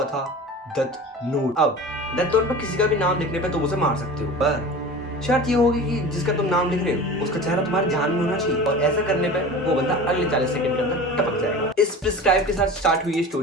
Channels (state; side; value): normal; both; correlation 0.35